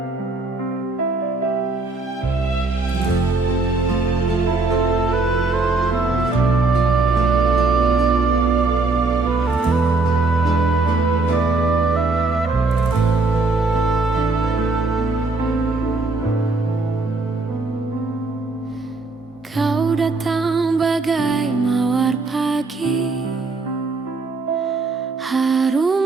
Kau datang bagai mawar pagi,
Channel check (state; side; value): quieter; left; 3.5 dB